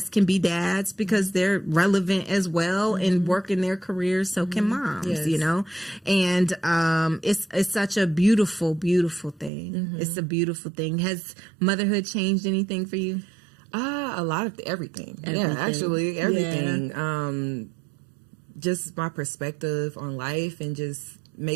can be dads because they're relevant as well and work in their careers, so can moms, you know? And it's such a beautiful, beautiful thing. Mm-hmm. It's a beautiful thing. Has motherhood changed anything for you? A lot of everything. Yeah, actually everything. Yeah. Just my perspective on life and just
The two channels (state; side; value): drops out; left; at 9.5 s